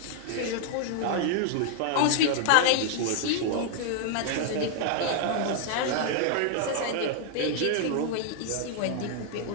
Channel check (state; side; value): different; both; correlation 0.00